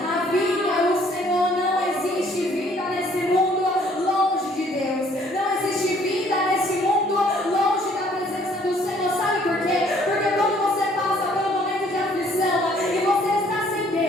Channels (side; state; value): both; normal; correlation 0.61